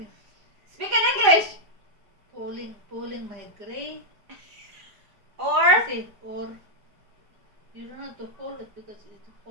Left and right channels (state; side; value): late; left; 4.9 ms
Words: Speak in English. Pulling my gray. Or Or you don't have to pull it because it will